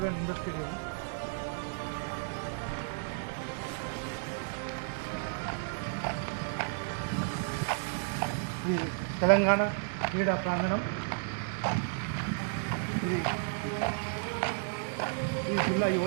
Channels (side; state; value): left; silent; digital silence